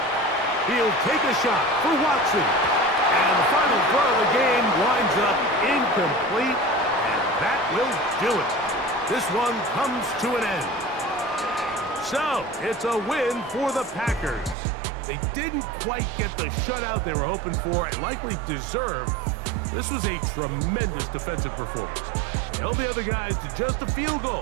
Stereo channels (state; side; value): drops out; left; at 14.6 s